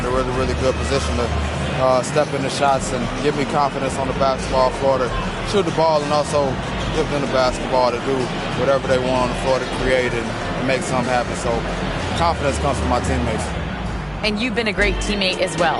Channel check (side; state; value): both; identical; correlation 1.00